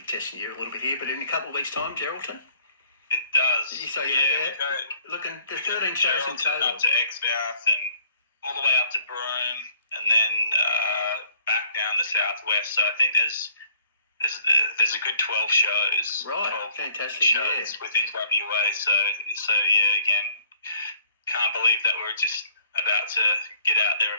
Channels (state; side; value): inverted; both; correlation -0.59